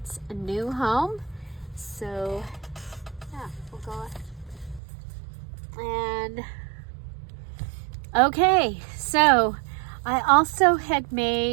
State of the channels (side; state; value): left; drops out; at 4.8 s